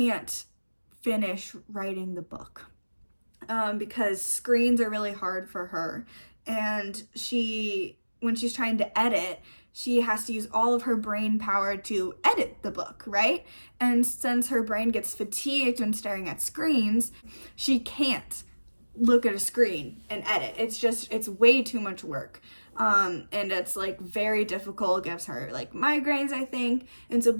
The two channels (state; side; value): inverted; both; correlation -1.00